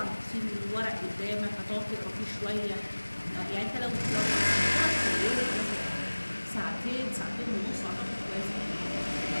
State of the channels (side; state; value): both; inverted; correlation -1.00